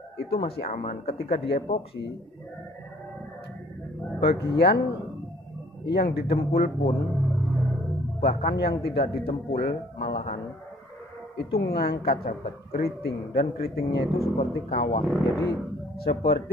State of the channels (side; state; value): both; normal; correlation 0.57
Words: itu masih aman. Ketika di epoksi, bagian yang didempul pun, bahkan yang tidak didempul malahan itu ngangkat sahabat, keriting, dan keritingnya itu seperti kawah. Jadi